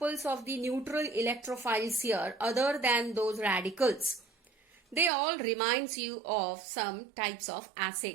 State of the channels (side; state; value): left; drops out; at 5.1 s